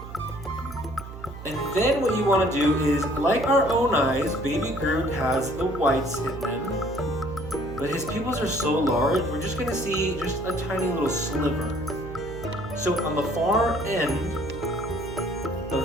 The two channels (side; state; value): right; noise; hum, 12 dB below the sound